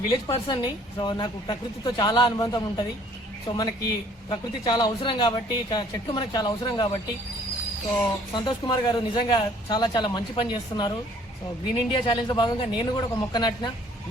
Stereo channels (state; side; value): normal; both; correlation 0.59